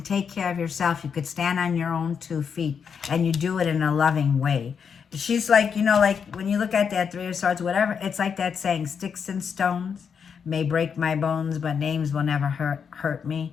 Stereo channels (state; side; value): quieter; right; 6.7 dB